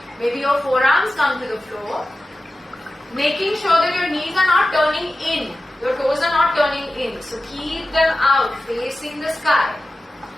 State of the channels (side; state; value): both; normal; correlation 0.94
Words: maybe your forearms come to the floor. Making sure that your knees are not turning in. Your toes are not turning in. So keep them out, facing the sky.